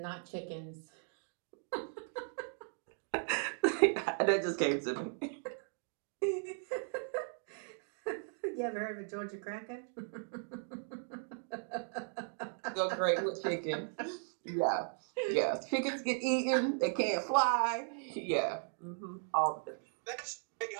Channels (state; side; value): silent; left; 53 dB below the other